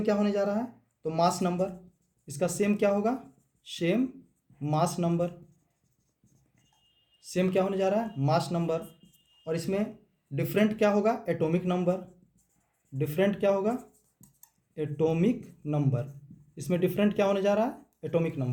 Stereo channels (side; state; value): both; identical; correlation 1.00